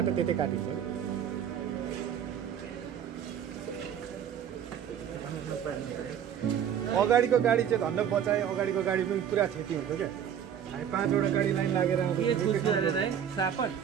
त्यतै काटिन्छ अगाडिको गाडी चाहिँ धन्न बचाए अगाडिको गाडी पनि पुरा क्षति हुन्छ क्या हामी 5 वटा गाडी लाइन लागेर सापट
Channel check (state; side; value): quieter; left; 9.0 dB